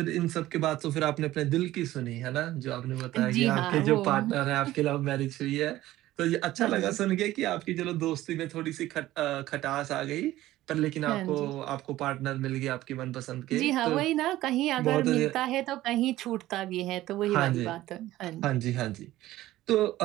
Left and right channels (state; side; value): quieter; left; 15.5 dB